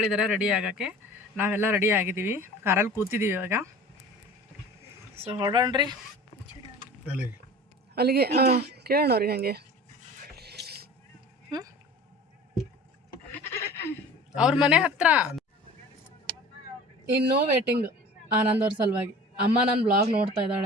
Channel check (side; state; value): both; normal; correlation 0.41